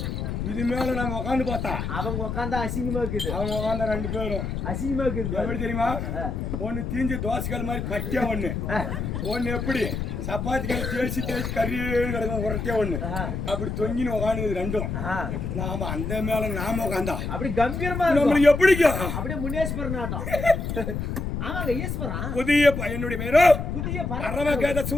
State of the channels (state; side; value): noise; left; rumble, 3 dB below the sound